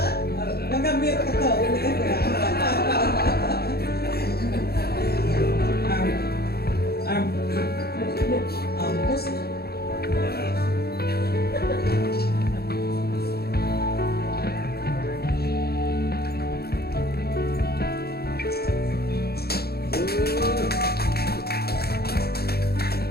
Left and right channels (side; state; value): right; late; 0.46 ms